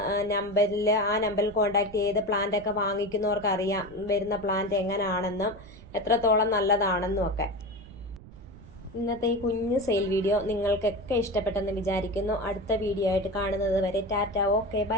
ആ നമ്പറിൽ കോൺടാക്ട് ചെയ്ത് പ്ലാന്റൊക്കെ വാങ്ങിക്കുന്നവർക്ക് അറിയാം വരുന്ന പ്ലാന്റ് എങ്ങനെയാണെന്നും എത്രത്തോളം നല്ലതാണെന്നും ഒക്കെ. ഇന്നത്തെ ഈ കുഞ്ഞു സെയിൽ വീഡിയോ നിങ്ങൾക്കൊക്കെ ഇഷ്ടപ്പെട്ടെന്ന് വിചാരിക്കുന്നു. അടുത്ത വീഡിയോ ആയിട്ട് കാണുന്നത് വരെ ടാറ്റ, ഓക്കെ,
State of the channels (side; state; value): right; noise; rumble, 18 dB below the sound